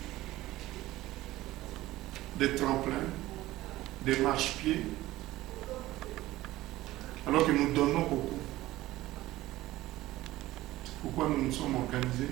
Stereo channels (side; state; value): left; quieter; 16.8 dB